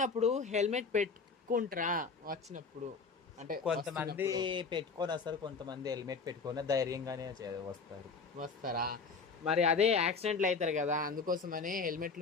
హెల్మెట్ పెట్టుకుంటారా? వచ్చినప్పుడు అంటే కొంతమంది పెట్టుకొని వస్తారు, కొంతమంది హెల్మెట్ పెట్టుకొని ధైర్యంగానే వస్తారా? మరి అదే యాక్సిడెంట్లు అవుతారు కదా, అందుకోసమని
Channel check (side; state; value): right; quieter; 4.7 dB